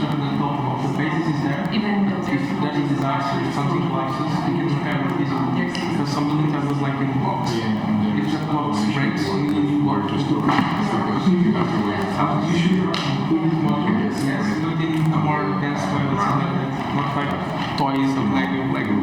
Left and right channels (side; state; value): both; identical; correlation 1.00